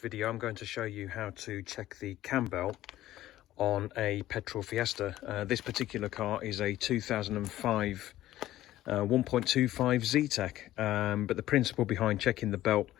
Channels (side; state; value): right; quieter; 14.5 dB